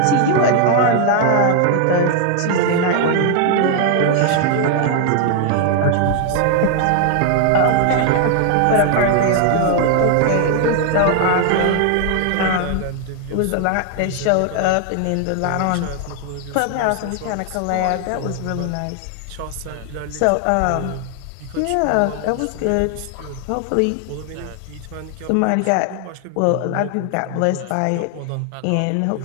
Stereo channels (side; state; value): both; different; correlation 0.00